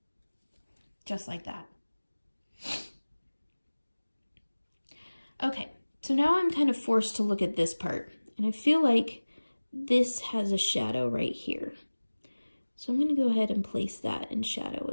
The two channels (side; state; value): both; inverted; correlation -1.00